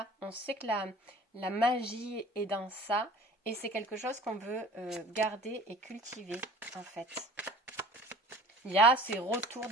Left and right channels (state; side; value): normal; both; correlation 0.44